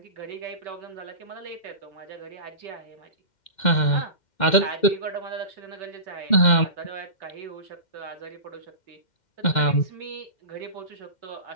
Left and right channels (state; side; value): late; right; 2.1 ms